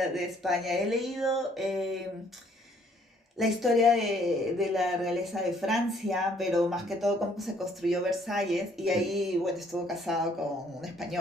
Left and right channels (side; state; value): both; normal; correlation 0.63